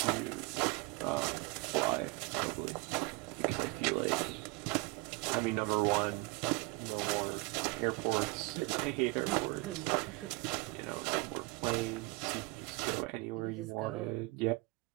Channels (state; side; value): quieter; left; 24.9 dB